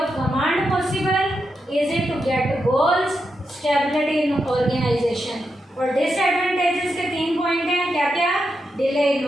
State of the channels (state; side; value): normal; both; correlation 0.85